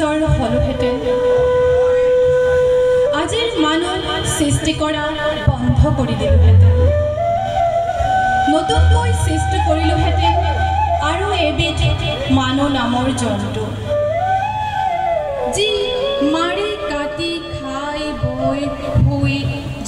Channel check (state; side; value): identical; both; correlation 1.00